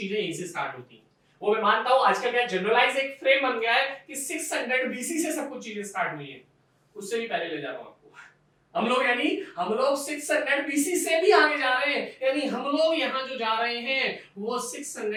यहीं से स्टार्ट होती हैं। वो मैं मानता हूं आजकल क्या जनरलाइज एक फ्रेम बन गया है कि 600 बीसी से सब कुछ चीजें स्टार्ट हुई है, उससे भी पहले ले जा रहा हूं आपको। हम लोग 600 बीसी से भी आगे जा रहे हैं, यानी हम लोग यहां जो जा रहे हैं वो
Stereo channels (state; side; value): identical; both; correlation 1.00